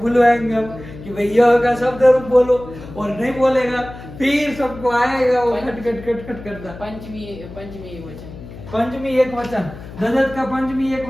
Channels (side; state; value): left; noise; hum, 15 dB below the sound